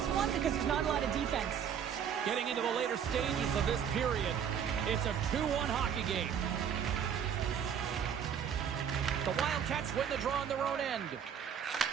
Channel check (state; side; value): quieter; left; 8.1 dB